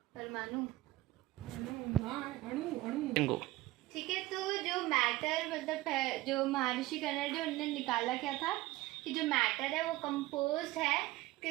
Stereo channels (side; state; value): left; quieter; 18.0 dB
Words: ठीक है, तो जो मैटर मतलब जो महर्षि कन्नडा उन्होंने निकाला क्या था कि जो मैटर है वो कंपोज्ड है,